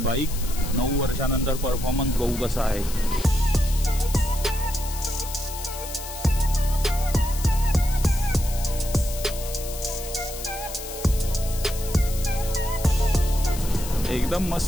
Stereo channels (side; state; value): left; noise; hiss, 11 dB below the sound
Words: 9 वर्षानंतर परफॉर्मन्स बघू कसा आहे। एकदम